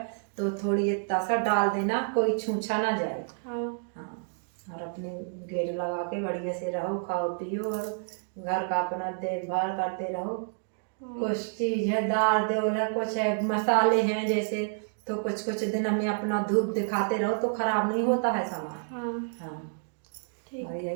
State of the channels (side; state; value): left; silent; digital silence